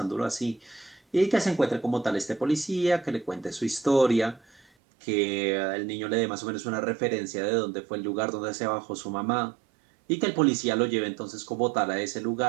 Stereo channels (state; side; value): drops out; left; at 4.7 s